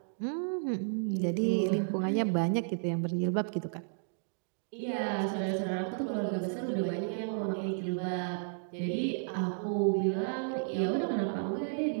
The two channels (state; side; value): silent; left; digital silence